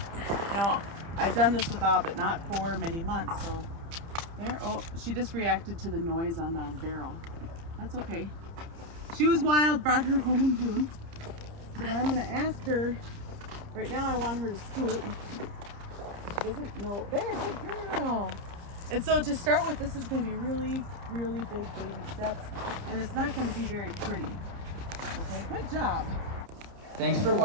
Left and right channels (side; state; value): left; late; 30 ms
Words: Now, I've done this without, but not for many months, so there. Oh, she just reacted to the noise on the barrel. That's okay. She was wild, brought her home in June. So now I'm gonna ask her, right now I want her to scoot. She doesn't know, there, good girl. And so to start with, this is gonna be really, really big baby steps, and it's not gonna be very pretty. Okay, good job. Thanks for